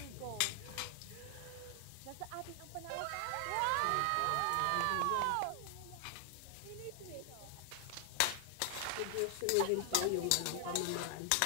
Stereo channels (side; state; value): both; different; correlation 0.00